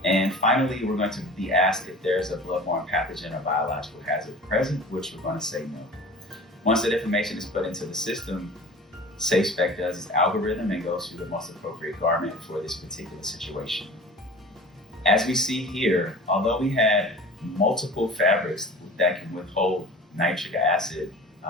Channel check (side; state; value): both; normal; correlation 0.40